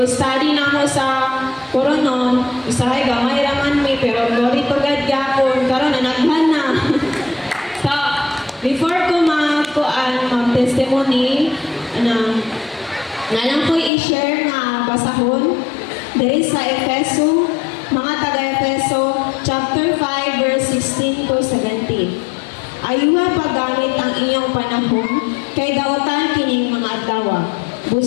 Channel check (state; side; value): drops out; right; at 13.9 s